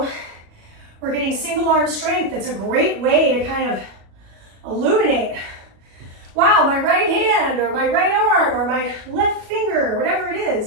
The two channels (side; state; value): left; late; 37 ms